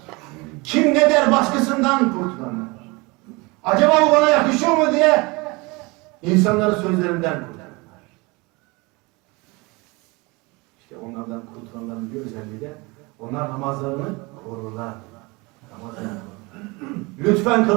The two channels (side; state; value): left; quieter; 25.7 dB